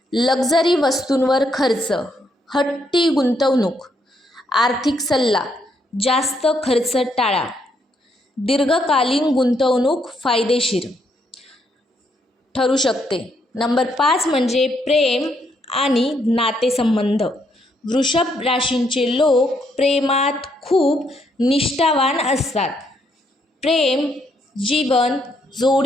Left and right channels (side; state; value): both; normal; correlation 0.74